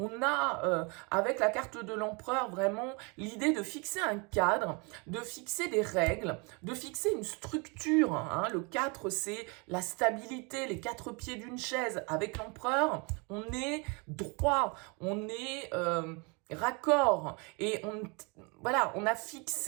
a, avec la carte de l'empereur, vraiment l'idée de fixer un cadre, de fixer des règles, de fixer une structure. Hein. Le 4, c'est la stabilité, les 4 pieds d'une chaise. Avec l'empereur, on est droit, on est raccord et voilà, on a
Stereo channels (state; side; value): quieter; left; 31.1 dB